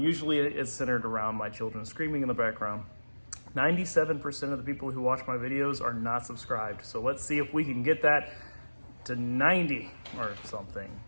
it's centered around my children screaming in the background. 97% of the people who watch my videos are not subscribed. So let's see if we can get that to 90 or something.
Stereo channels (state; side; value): inverted; both; correlation -1.00